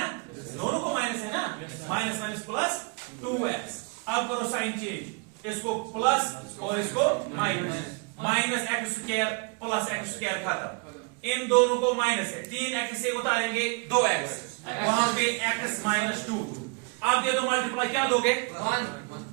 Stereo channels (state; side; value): quieter; left; 33.3 dB